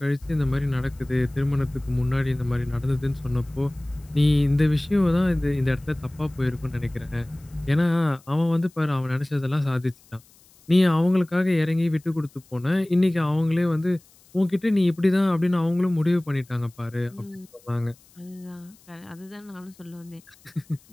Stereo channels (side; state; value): left; noise; hiss, 28 dB below the sound